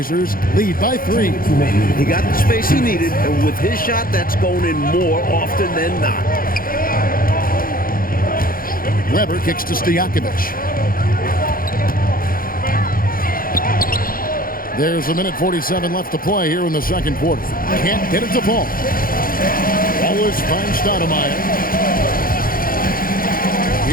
lead by 3. He got the space he needed, and with his shot, that's going in more often than not. Weber kicks to Stojakovic. There's a minute 47 left to play here in the second quarter. Can't get it to fall. Wallace finds Stoudemire.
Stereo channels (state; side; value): late; right; 0.42 ms